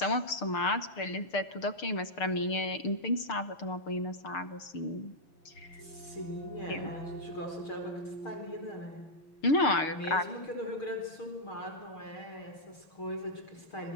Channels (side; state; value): right; late; 6.7 ms